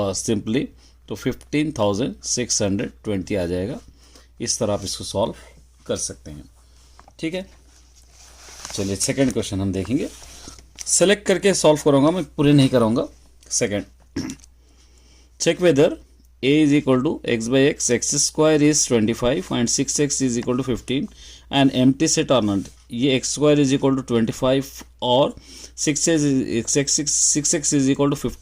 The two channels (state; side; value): identical; both; correlation 1.00